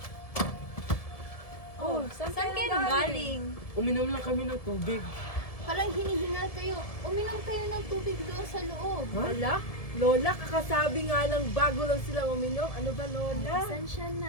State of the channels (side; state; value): right; late; 1.7 ms